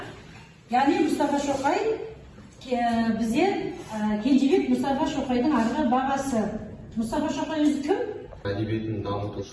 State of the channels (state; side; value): identical; both; correlation 1.00